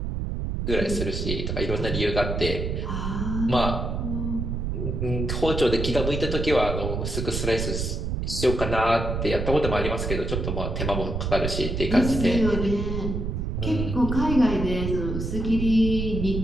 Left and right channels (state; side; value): noise; right; rumble, 2 dB below the sound